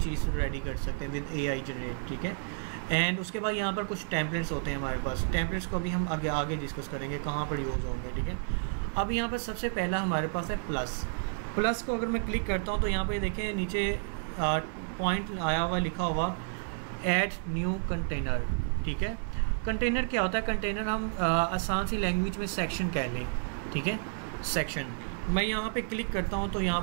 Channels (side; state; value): left; silent; digital silence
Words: रेडी कर सकते हैं विद AI जनरेट, ठीक है। एंड उसके बाद यहाँ पर कुछ टेम्पलेट्स होते हैं हमारे पास। टेम्पलेट्स को भी हम आगे डिस्कस करेंगे कहाँ पर यूज़ होंगे, ठीक है। अब यहाँ पर सबसे पहला हमारे पास है प्लस को अगर मैं क्लिक करता हूँ तो यहाँ पर देखें नीचे पॉइंट आया हुआ लिखा हुआ ऐड न्यू कंटेनर, ठीक है। कंटेनर क्या होता है, कंटेनर हम आसान सी लैंग्वेज में सेक्शन कह लें, ठीक है। सेक्शन मैं यहाँ पे क्लिक करता हूँ तो यहाँ